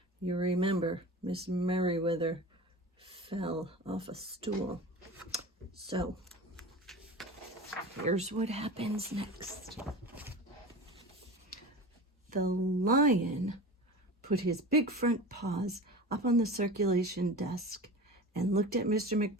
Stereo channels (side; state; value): both; normal; correlation 0.33